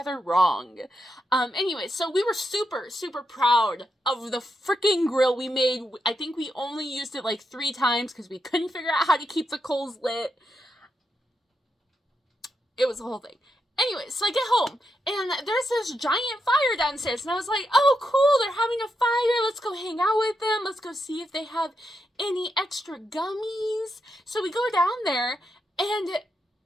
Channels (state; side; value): normal; both; correlation 0.84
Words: wrong. Anyway, so we were super, super proud of the freaking grill we made. I think we only used it like 3 times because we couldn't figure out how to keep the coals lit. It was a whole thing. Anyway, so I get home, and there's this giant fire downstairs, and I was like, oh, cool, they're having a fire, let's go hang out with them, let's go see if they have any extra gummies. So we go down there, and